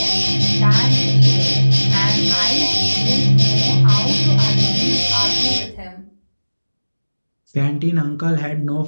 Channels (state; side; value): inverted; both; correlation -1.00